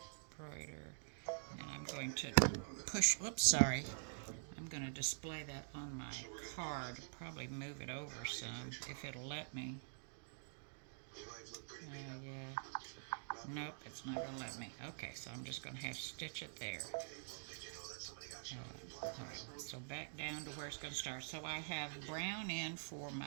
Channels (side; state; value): left; silent; digital silence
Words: embroider, and I'm going to push, oops, sorry. I'm going to display that on my card, probably move it over some, if it'll let me. Yeah. Nope, it's not going to let me. Okay, so I'm just going to have to stitch it there. Alright, so back down to where it's going to start. So I have brown in for